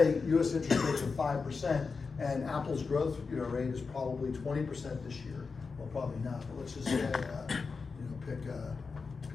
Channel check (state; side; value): quieter; right; 4.8 dB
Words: US interest rates are 5% and Apple's growth rate is probably 20% this year. Well, probably not, but let's just say, pick